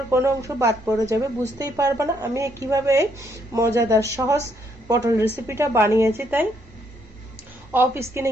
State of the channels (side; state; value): both; normal; correlation 0.72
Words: কোনো অংশ বাদ পড়ে যাবে, বুঝতেই পারবে না আমি কিভাবে এই মজাদার সহজ পটল রেসিপিটা বানিয়েছি। তাই অফ স্কিনে